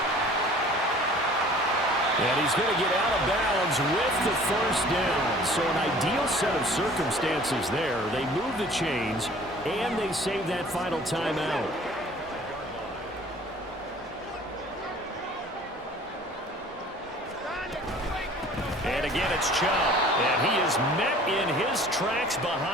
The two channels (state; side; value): normal; both; correlation 0.49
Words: And he's going to get out of bounds with the first down. So an ideal set of circumstances there. They move the chains, and they save that final timeout. And again, it's Chubb. And he is met in his tracks